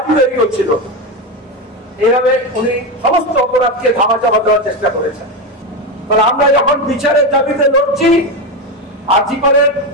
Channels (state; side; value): normal; both; correlation 0.14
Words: তৈরি হচ্ছিল। এইভাবে উনি সমস্ত অপরাধকে ধামাচাপা দেওয়ার চেষ্টা করেছেন। তাহলে আমরা যখন বিচারের দাবিতে লড়ছি, আর্জিকরের